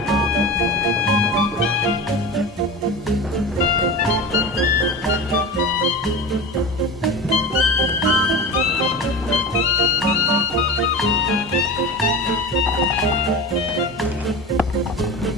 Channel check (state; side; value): normal; both; correlation 0.29